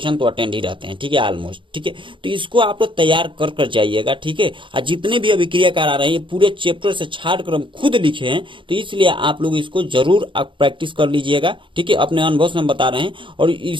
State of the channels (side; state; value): left; late; 0.24 ms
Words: तो अटेंड ही रहते हैं। ठीक है, ऑलमोस्ट। ठीक है, तो इसको आप लोग तैयार कर जाइएगा। ठीक है, और जितने भी अभिक्रियाकार आ रहे हैं पूरे चैप्टर से छाट कर हम खुद लिखे हैं, तो इसलिए आप लोग इसको जरूर आप प्रैक्टिस कर लीजिएगा। ठीक है, अपने अनुभव से हम बता रहे हैं, और